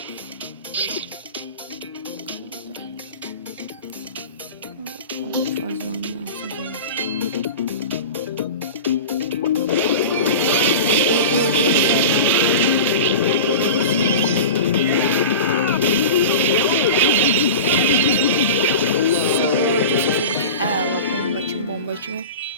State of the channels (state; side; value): inverted; both; correlation -0.30